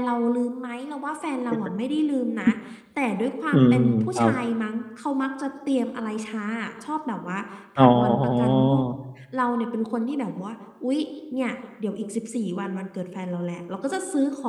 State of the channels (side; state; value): both; identical; correlation 1.00